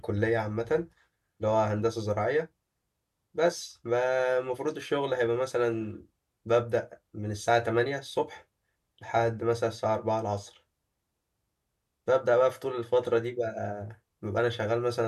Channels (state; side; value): identical; both; correlation 1.00